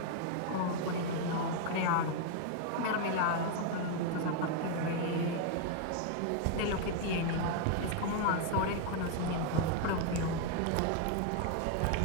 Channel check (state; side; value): different; both; correlation 0.00